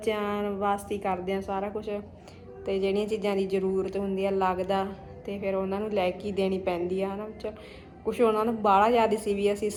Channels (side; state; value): both; identical; correlation 1.00